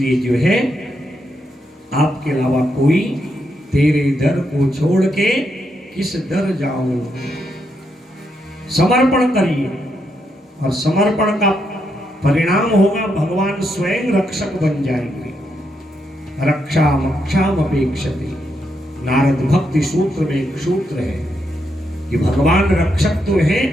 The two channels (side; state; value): both; normal; correlation 0.80